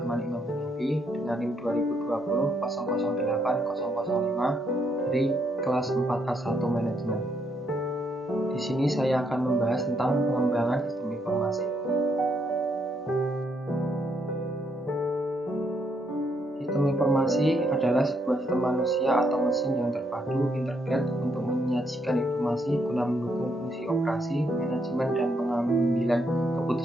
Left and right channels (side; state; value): both; normal; correlation 0.75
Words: Imam Hanafi dengan NIM 2020 008005 dari kelas 4A1 Manajemen. Di sini saya akan membahas tentang pengembangan sistem informasi. Sistem informasi adalah sebuah sistem manusia atau mesin yang terpadu integrate untuk menyajikan informasi guna mendukung fungsi operasi, manajemen, dan pengambilan